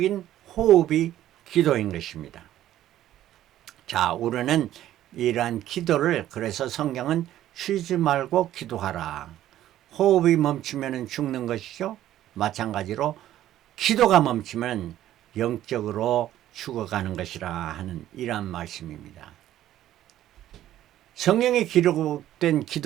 호흡이 기도인 것입니다. 자, 우리는 이러한 기도를, 그래서 성경은 쉬지 말고 기도하라. 호흡이 멈추면 죽는 것이죠. 마찬가지로 기도가 멈추면 영적으로 죽어가는 것이라 하는 이러한 말씀입니다. 성경에 기록된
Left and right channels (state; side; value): quieter; left; 12.9 dB